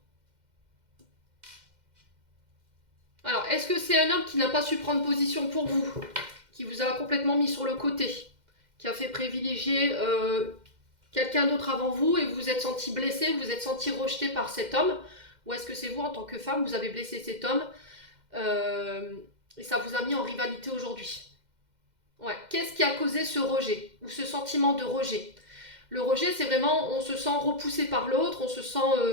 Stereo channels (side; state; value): left; late; 2.1 ms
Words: Alors, est-ce que c'est un homme qui n'a pas su prendre position pour vous, qui vous a complètement mis sur le côté, qui a fait privilégier quelqu'un d'autre avant vous et vous vous êtes senti blessé, vous vous êtes senti rejeté par cet homme? Ou est-ce que c'est vous, en tant que femme, vous avez blessé cet homme et ça vous a mis en rivalité aujourd'hui? Ouais. Qu'est-ce qui a causé ce rejet ou ce sentiment de rejet? Le rejet, c'est vraiment, on se sent repoussé par l'autre, on se sent